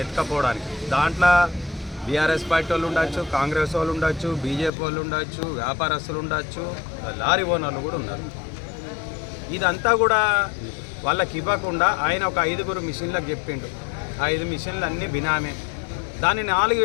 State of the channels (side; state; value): right; drops out; at 4.7 s